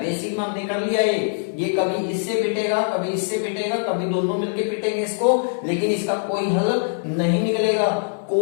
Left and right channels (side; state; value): right; silent; digital silence